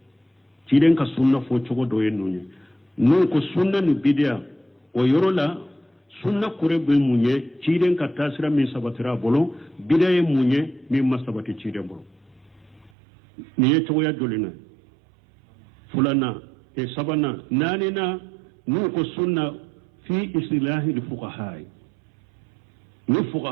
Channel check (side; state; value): left; drops out; at 12.9 s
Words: ciden ka sunna fo cogo do yen nunye non ko sunna ni bidia o yorola sunna kure be munye ciden ka tasira min sabatira bolo bidaye munye min masabati ciden bolo ni ye cogo ya dolina fulana e sabana nanina non ko sunna fi islahi al fuqaha ni